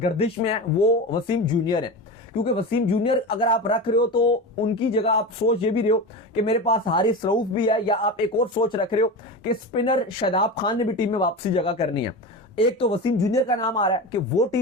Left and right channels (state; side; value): normal; both; correlation 0.25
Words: में है वो वसीम जूनियर है, क्योंकि वसीम जूनियर अगर आप रख रहे हो तो उनकी जगह आप सोच ये भी रहे हो कि मेरे पास हारिस रऊफ भी है, या आप एक और सोच रख रहे हो कि स्पिनर शादाब खान ने भी टीम में वापसी जगह करनी है। एक तो वसीम जूनियर का नाम आ रहा है कि वो